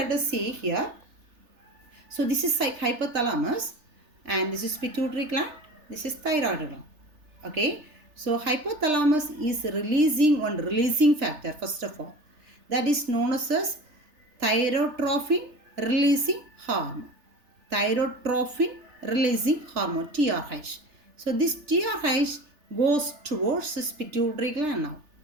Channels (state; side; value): late; left; 3.3 ms